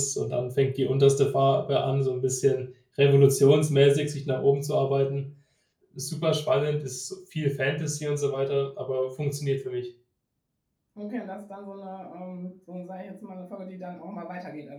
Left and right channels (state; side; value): identical; both; correlation 1.00